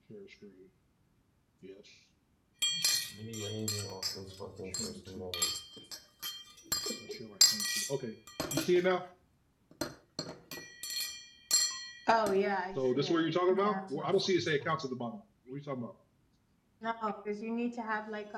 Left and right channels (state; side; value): identical; both; correlation 1.00